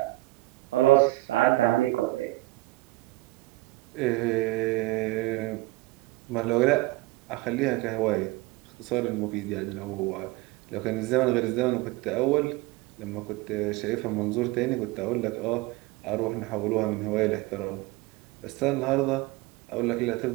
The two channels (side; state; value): left; quieter; 20.4 dB